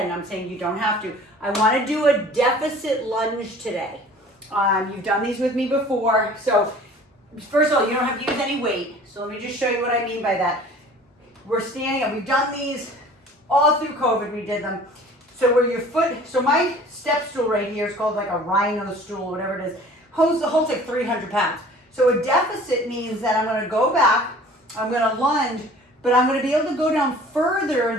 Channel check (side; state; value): both; normal; correlation 0.47